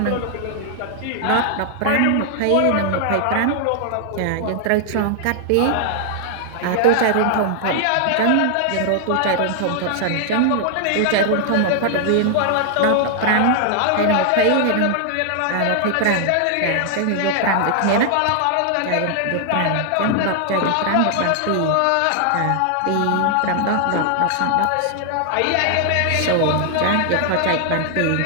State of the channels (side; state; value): both; different; correlation 0.00